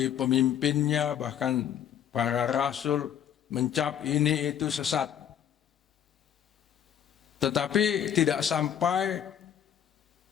pemimpinnya, bahkan para rasul, mencap ini itu sesat. Tetapi tidak sampai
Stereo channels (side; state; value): right; quieter; 9.5 dB